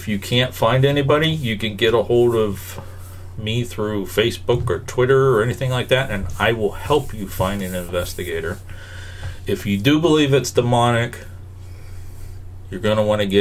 you can't find anybody, you can get a hold of me through Facebook or Twitter or anything like that, and I will help you find an investigator. If you do believe it's demonic, you're going to want to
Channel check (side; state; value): both; identical; correlation 1.00